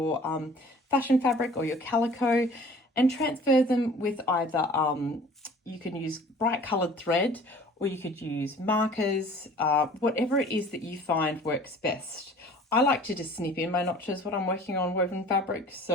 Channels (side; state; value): both; normal; correlation 0.48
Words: fashion fabric or your calico, and transfer them with either you can use bright coloured thread, or you could use markers, whatever it is that you find works best. I like to just snip in my notches when I'm working on woven fabric.